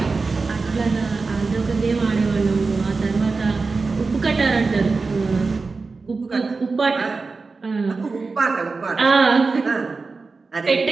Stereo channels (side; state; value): left; quieter; 4.1 dB